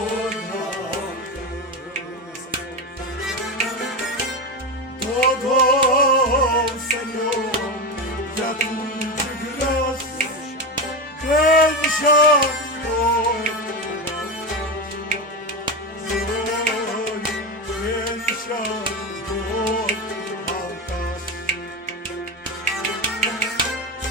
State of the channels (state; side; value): normal; both; correlation 0.18